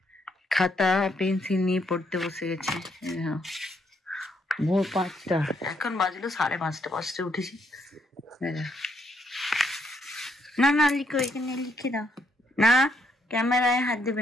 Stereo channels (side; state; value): both; normal; correlation 0.74